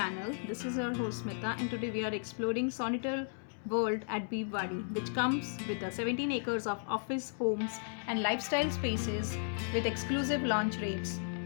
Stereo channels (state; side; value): silent; right; digital silence